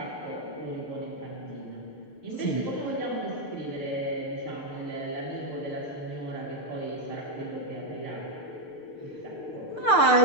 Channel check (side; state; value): right; late; 6.6 ms